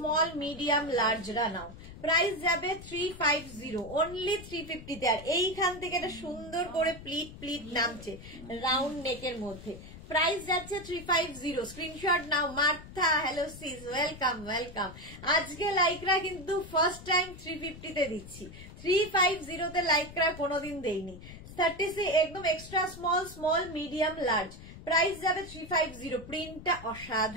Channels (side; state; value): left; noise; rumble, 15 dB below the sound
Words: medium, লার্জরা নাও। প্রাইস যাবে 350, অনলি 350 তে। আর এইখান থেকে এটা সুন্দর করে প্লিট নামছে রাউন্ড নেকের মধ্যে। প্রাইস যাচ্ছে 350, স্ক্রিনশট নাও। Martha, hello sis, welcome welcome. আজকে লাইকরা কিন্তু ফার্স্ট টাইম 350 তে দিচ্ছি, 350 তে লাইকরা কোনোদিন দেইনি। 36 একদম extra small, small, medium, large. Price যাবে 350। প্রিন্টটা